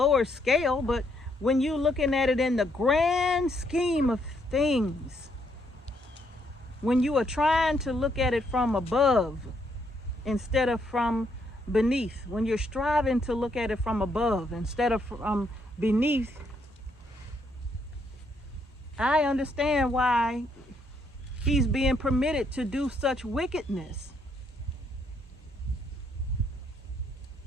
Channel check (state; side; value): normal; both; correlation 0.73